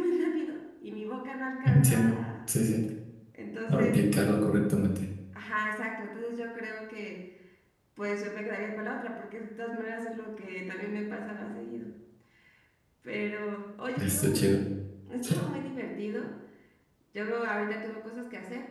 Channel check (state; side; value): identical; both; correlation 1.00